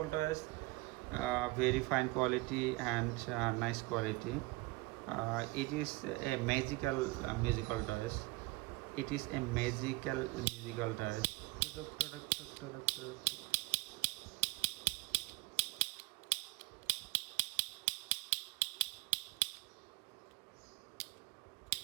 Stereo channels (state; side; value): quieter; left; 23.5 dB